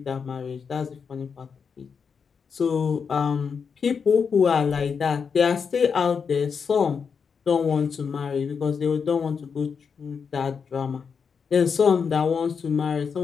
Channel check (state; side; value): quieter; right; 6.1 dB